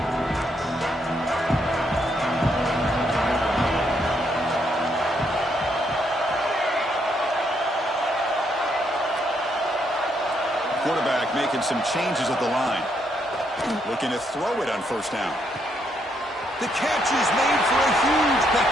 Quarterback making some changes at the line. Looking to throw it on first down. The catch is made for a huge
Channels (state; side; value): normal; both; correlation 0.75